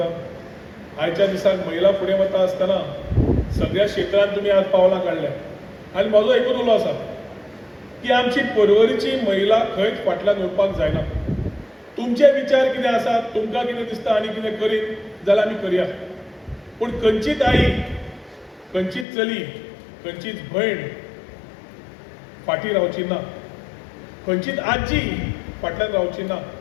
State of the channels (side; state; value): right; drops out; at 19.1 s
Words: आयच्या दिसाक महिला फुडें वता आसतना सगळ्या क्षेत्रांत तुमी आज पावलां काडल्या आनी म्हजो एकूच उलो आसा की आमची परवरीची महिला खंयच फाटल्यान उरपाक जायना. तुमचे विचार कितें आसात, तुमकां कितें दिसता आनी कितें करीत जाल्यार आमी करया. पूण खंयचीच आई, खंयचीच चली, खंयचीच भयण फाटीं रावची ना, खंयचीच आजी फाटल्यान रावची ना.